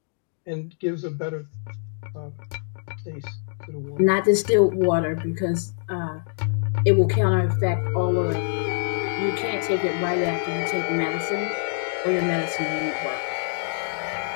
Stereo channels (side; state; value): right; silent; 62 dB below the other